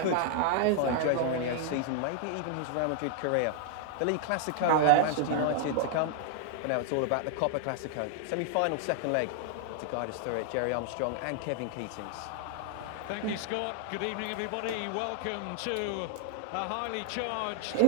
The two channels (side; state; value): both; different; correlation -0.01